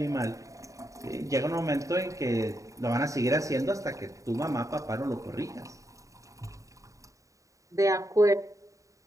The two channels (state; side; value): late; left; 0.16 ms